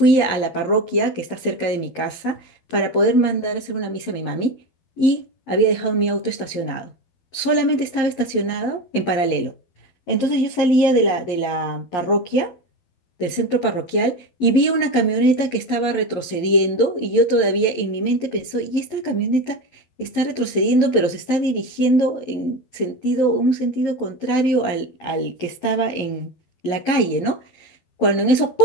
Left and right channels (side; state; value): right; late; 11 ms